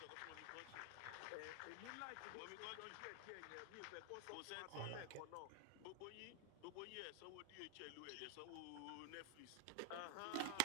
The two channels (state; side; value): different; both; correlation 0.00